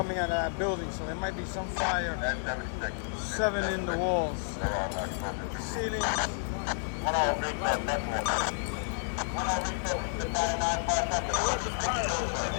out of that building, so there might be some fire. And 76. 7 in the walls. They're on exposure 2 roof. Ceilings. 1-0, resource, F4. 1-0, resource, Battalion 9, fire sector. We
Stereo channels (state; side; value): silent; right; digital silence